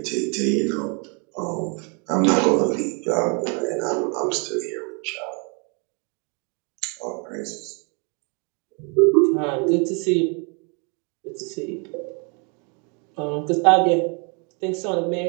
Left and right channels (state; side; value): quieter; left; 35.5 dB